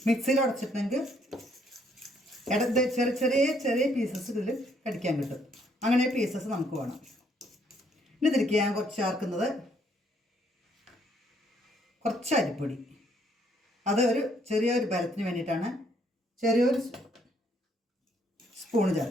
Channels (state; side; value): normal; both; correlation 0.69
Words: മിക്സിയിൽ ഉടച്ചിട്ടുണ്ടെങ്കിൽ ചെറിയ ചെറിയ ചെറിയ പീസസ് ഇതിൽ കടിക്കാൻ കിട്ടും. അങ്ങനെ പീസസ് നമുക്ക് വേണം. ഇനി ഇതിലേക്ക് ഞാൻ കുറച്ച് ചേർക്കുന്നത് കുറച്ച് അരിപ്പൊടി. അത് ചെറിയൊരു ബലത്തിന് വേണ്ടിയിട്ടാണ്. ചെറിയൊരു സ്പൂണ്